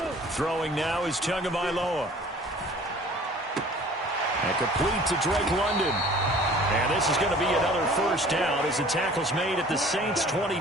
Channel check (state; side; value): normal; both; correlation 0.49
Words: Throwing now is Tagovailoa. And complete to Drake London. And this is going to be another 1st down as the tackle's made at the Saints'